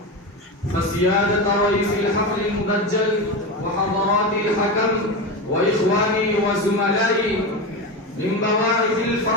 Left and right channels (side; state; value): both; normal; correlation 0.20